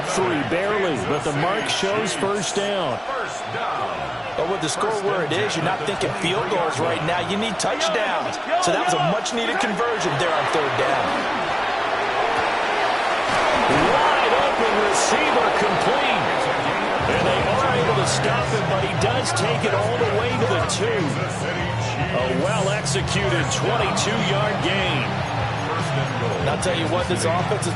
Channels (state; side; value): identical; both; correlation 1.00